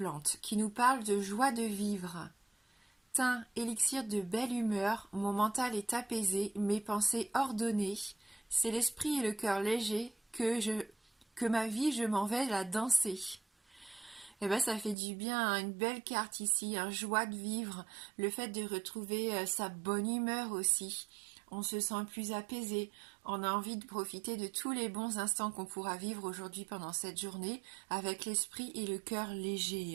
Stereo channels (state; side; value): drops out; left; at 15.0 s